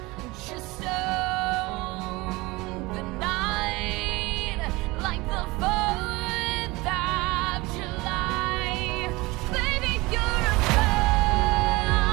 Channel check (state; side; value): quieter; left; 22.3 dB